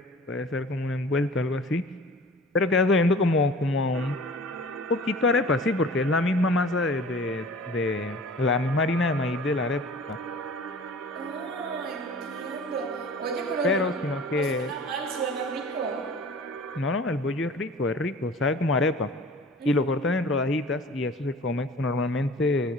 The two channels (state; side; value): normal; both; correlation 0.44